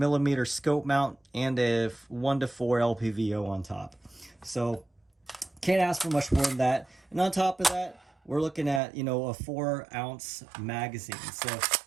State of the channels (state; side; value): drops out; left; at 8.8 s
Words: scope mount and a 1 to 4 LPVO on top. So can't ask for much more than that. And on top of that, we're looking at, a 4-ounce magazine. So